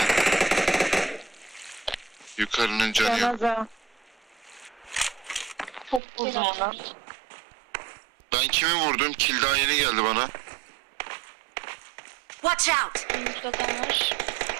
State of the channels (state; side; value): drops out; left; at 6.0 s